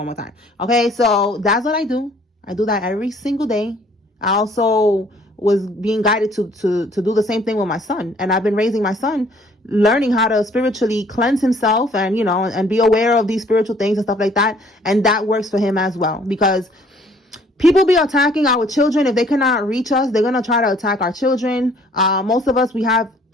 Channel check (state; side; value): normal; both; correlation 0.59